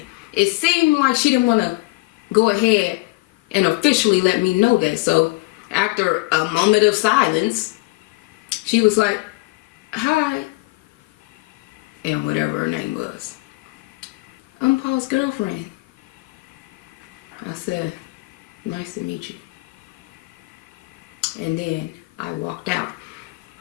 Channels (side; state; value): right; quieter; 23.1 dB